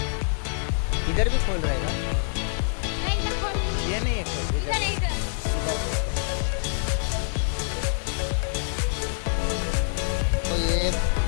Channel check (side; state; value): right; silent; digital silence